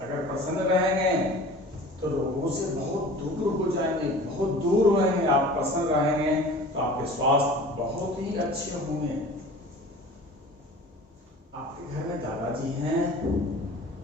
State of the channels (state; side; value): normal; both; correlation 0.42